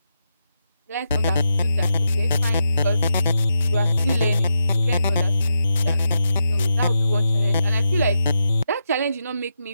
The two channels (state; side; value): inverted; both; correlation -0.86